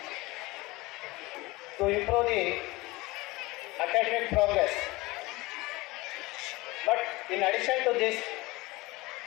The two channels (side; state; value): right; quieter; 21.7 dB